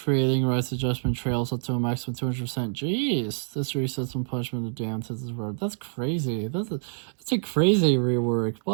Rights Adjustment trails up to a maximum 200%. Jeez. This resets when punishment of the damned hits his word. That's crazy. That's a crazy rework.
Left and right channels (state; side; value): silent; left; 60 dB below the other